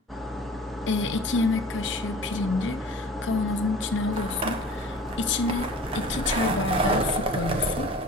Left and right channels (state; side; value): normal; both; correlation 0.43